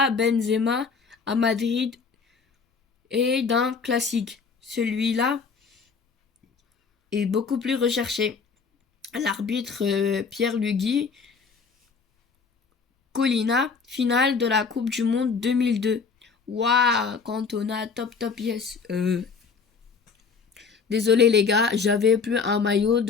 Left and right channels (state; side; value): quieter; right; 5.4 dB